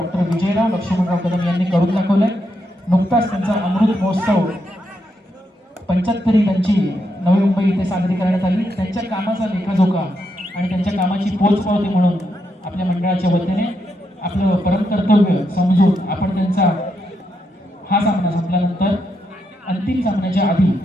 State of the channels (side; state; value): both; normal; correlation 0.81